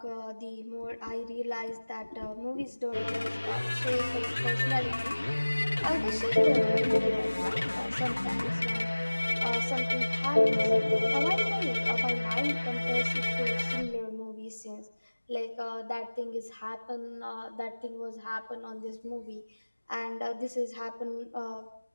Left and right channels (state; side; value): inverted; both; correlation -1.00